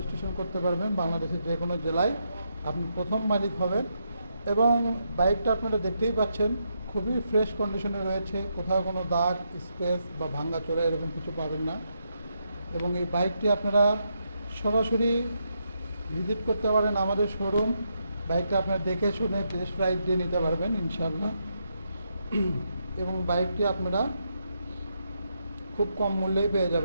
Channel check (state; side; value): inverted; both; correlation -0.81